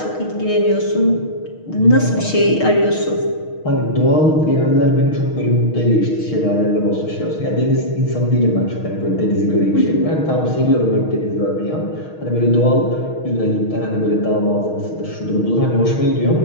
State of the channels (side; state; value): right; late; 6.4 ms